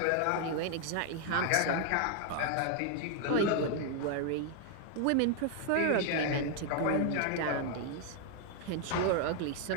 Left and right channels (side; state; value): both; different; correlation 0.00